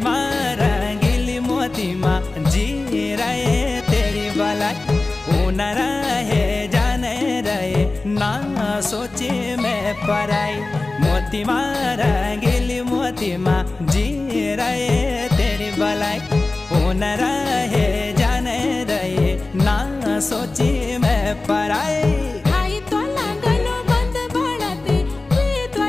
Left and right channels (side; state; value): right; quieter; 3.2 dB